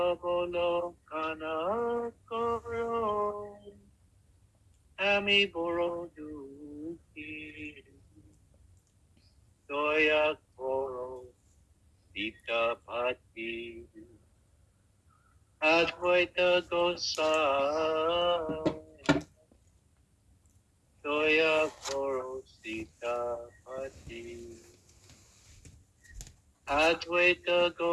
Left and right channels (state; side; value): identical; both; correlation 1.00